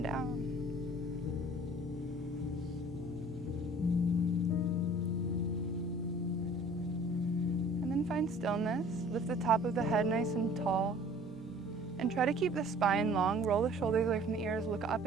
down. Find stillness. Lift the top of the head nice and tall. And try to keep the spine long. Roll the shoulders away from the ears. Look up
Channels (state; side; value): normal; both; correlation 0.50